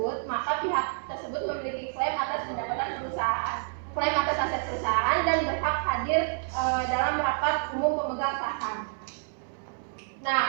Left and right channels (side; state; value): left; silent; 59 dB below the other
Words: maka pihak tersebut memiliki klaim atas pendapatan perusahaan, klaim atas aset perusahaan, dan berhak hadir dalam rapat umum pemegang saham. Nah,